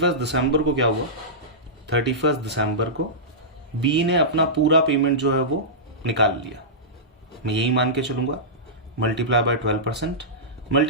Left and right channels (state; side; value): normal; both; correlation -0.16